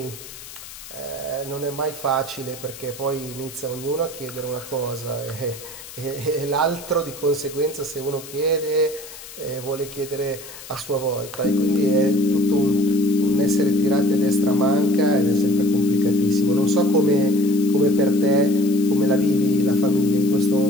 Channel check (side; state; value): left; noise; hiss, 15 dB below the sound